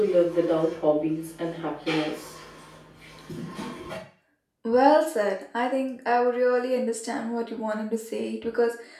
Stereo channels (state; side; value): identical; both; correlation 1.00